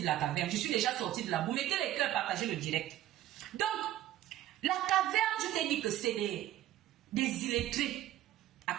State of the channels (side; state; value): left; quieter; 13.4 dB